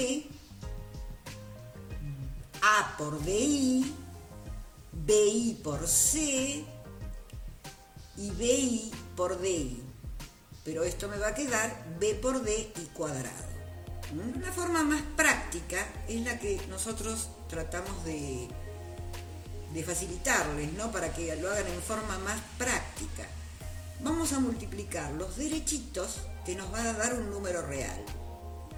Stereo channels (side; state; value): both; identical; correlation 1.00